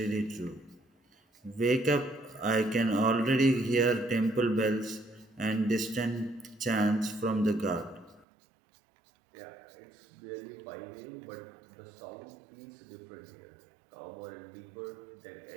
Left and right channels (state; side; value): drops out; left; at 8.2 s